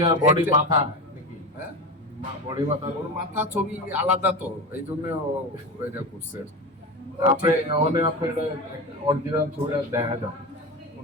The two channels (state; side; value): normal; both; correlation 0.23